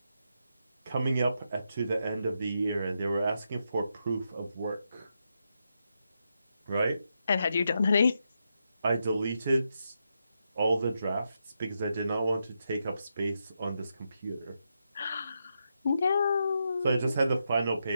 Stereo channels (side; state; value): both; inverted; correlation -0.84